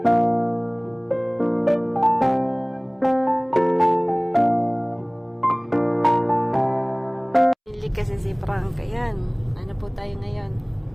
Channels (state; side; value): identical; both; correlation 1.00